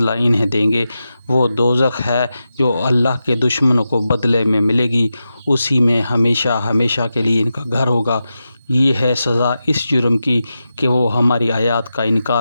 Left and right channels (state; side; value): inverted; both; correlation -0.90